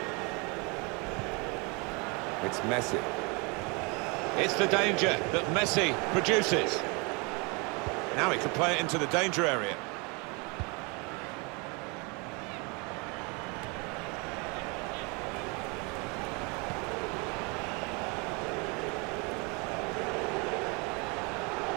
It's Messi. It's the danger that Messi produces. Now he can play it into the danger area.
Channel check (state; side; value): quieter; left; 30.3 dB